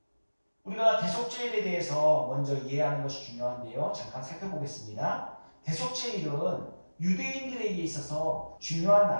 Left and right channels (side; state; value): both; inverted; correlation -1.00